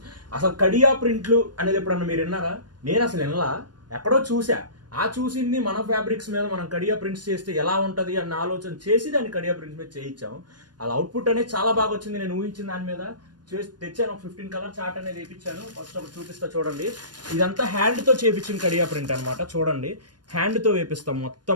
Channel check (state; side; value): late; left; 0.70 ms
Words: అసలు కడియా ప్రింట్లు అనేది ఎప్పుడన్నా మీరు విన్నారా? నేను అసలు వినలా, ఎక్కడో చూసా. ఆ చూసింది మన ఫ్యాబ్రిక్స్ మీద మనం కడియా ప్రింట్స్ చేస్తే ఎలా ఉంటుంది అన్న ఆలోచన చేసి దాన్ని కడియా ప్రింట్స్ మీద చేయించాము. అలా అవుట్పుట్ అనేది చాలా బాగా వచ్చింది. నేను ఊహించిన దాని మీద చేసి తెచ్చాను. 15 కలర్ చార్ట్ అనేది వేయించాను. ఫస్ట్ ఒకటి చూపిస్తా చూడండి. ఇదంతా హ్యాండ్తో చేయించిన కడియా ప్రింట్ అనమాట. చూడండి, హ్యాండ్తో వేపిస్తాం మొత్తం